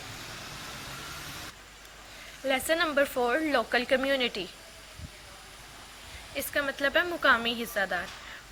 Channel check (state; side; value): identical; both; correlation 1.00